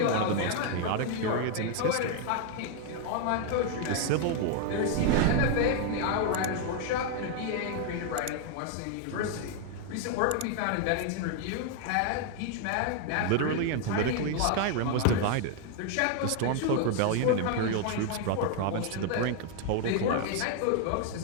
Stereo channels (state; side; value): different; both; correlation 0.00